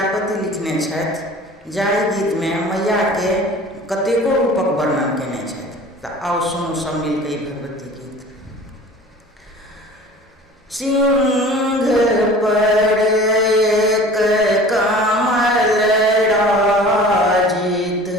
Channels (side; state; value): both; normal; correlation 0.43